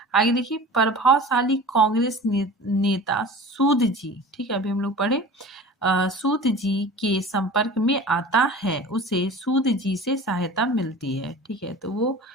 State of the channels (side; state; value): both; normal; correlation 0.39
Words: आगे देखिए प्रभावशाली कांग्रेस नेता सूद जी, ठीक है, अभी हम लोग पढ़े, सूद जी के संपर्क में आता है। उसे सूद जी से सहायता मिलती है। ठीक है, तो वो